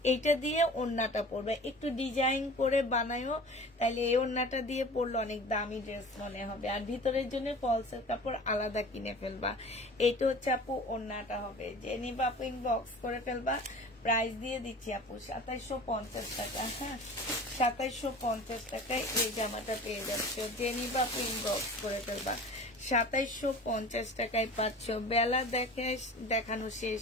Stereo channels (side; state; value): both; normal; correlation 0.40